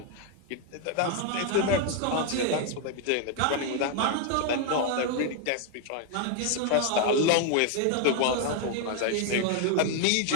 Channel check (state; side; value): different; both; correlation 0.00